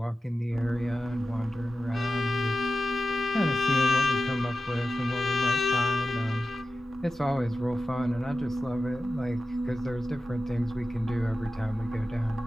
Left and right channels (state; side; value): normal; both; correlation 0.93